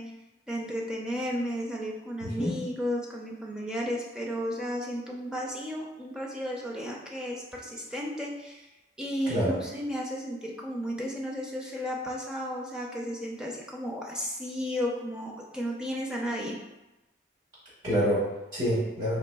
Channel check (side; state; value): both; normal; correlation 0.64